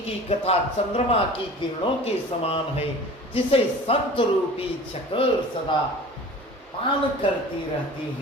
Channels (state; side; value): normal; both; correlation 0.41